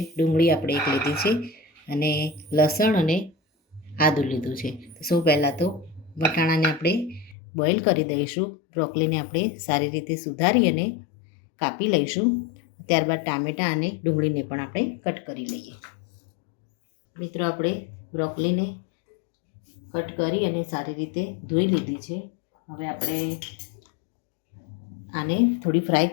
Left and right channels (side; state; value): right; drops out; at 7.4 s